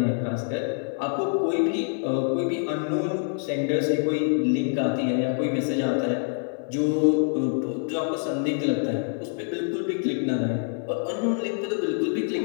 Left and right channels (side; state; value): right; silent; 56 dB below the other